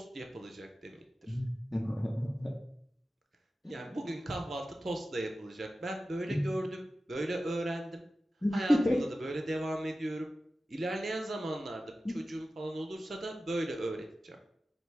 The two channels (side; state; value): both; normal; correlation 0.94